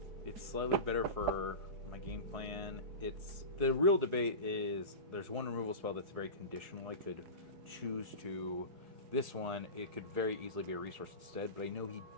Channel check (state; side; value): late; left; 4.8 ms